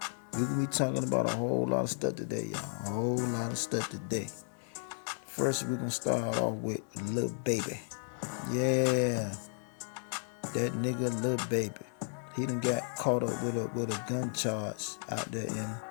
we're going to be talking about a whole lot of stuff today, y'all. A whole lot of stuff today. First, we're going to start off with Lil Baby. Yeah. That nigga Lil Baby. He done got caught up with a gun charge out there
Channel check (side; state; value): right; silent; 55 dB below the other